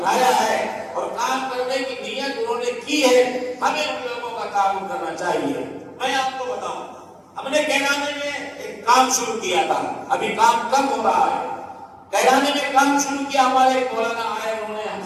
ہے اور کام کرنے کی نیت انہوں نے کی ہے. ہمیں ان لوگوں کا تعاون کرنا چاہیے. میں آپ کو بتاؤں, ہم نے کیرانے میں ایک کام شروع کیا تھا, ابھی کام کم ہو رہا ہے. کیرانے میں کام شروع کیا, ہمارے مولانا آئے, انہوں نے ہم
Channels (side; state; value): both; identical; correlation 1.00